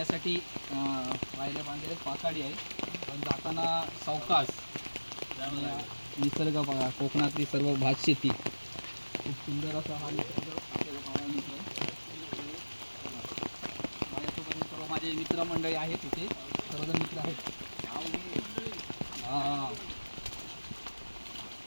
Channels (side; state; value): both; inverted; correlation -1.00